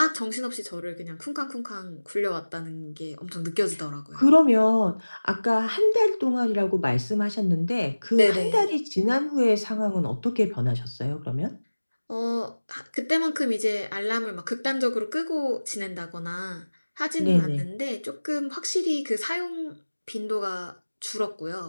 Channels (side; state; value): both; inverted; correlation -1.00